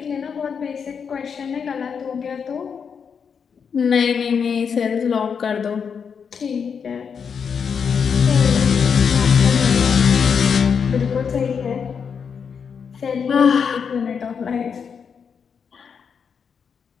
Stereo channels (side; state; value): right; quieter; 6.5 dB